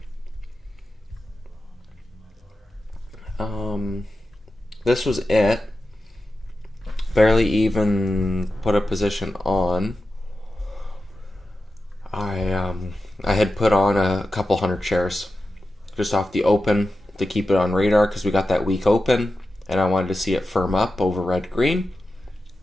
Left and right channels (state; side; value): normal; both; correlation 0.92